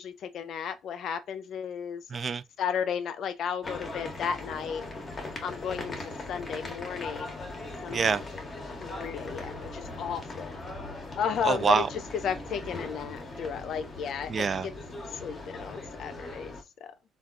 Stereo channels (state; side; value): normal; both; correlation 0.68